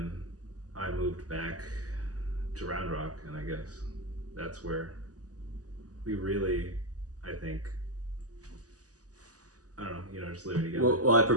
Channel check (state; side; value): late; left; 0.67 ms